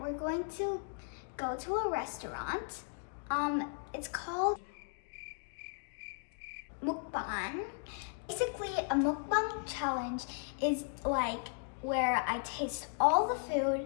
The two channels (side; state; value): right; silent; 54 dB below the other